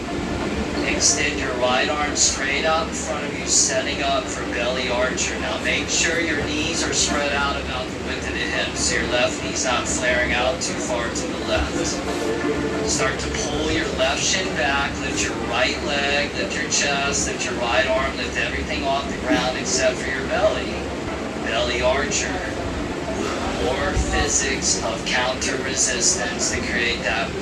Extend your right arm straight out in front of you, setting up for belly archer. Now make sure your knees are spread out about the width of the hips, so your left knee's not flaring out too far to the left. Start to pull your left shin back, lift your right leg, lift your chest, lift your right arm, lift everything off the ground except for your belly. Belly archer. More physics of counter resistance to create that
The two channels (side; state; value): both; identical; correlation 1.00